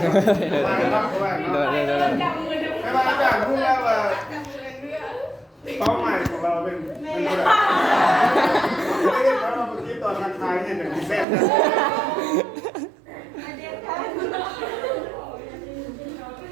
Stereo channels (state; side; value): drops out; left; at 11.2 s